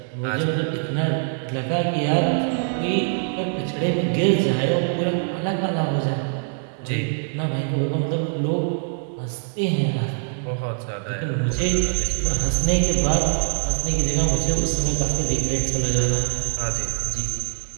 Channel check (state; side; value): silent; left; 63 dB below the other